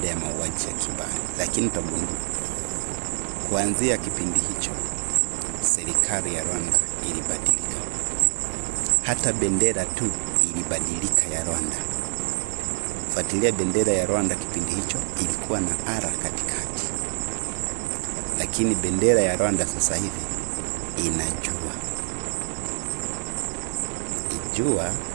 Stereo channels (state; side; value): silent; left; digital silence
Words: ya mauaji ya kimbali. Lakini utagundua kuanzia kipindi hicho serikali ya Rwanda ilibadilika. Hata bendera tu ilibadilika ya Rwanda. Fuatilia bendera ya Rwanda kipindi hicho ilikuwa na ara katikati. Lakini bendera ya Rwanda sasa hivi ina jua